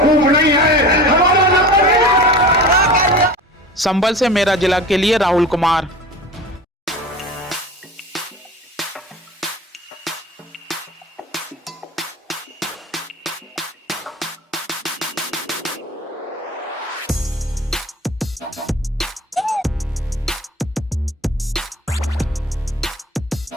मूव नहीं है, हमारा नंबर नहीं है। संभल से मेरा जिला के लिए राहुल कुमार।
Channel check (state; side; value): normal; both; correlation 0.36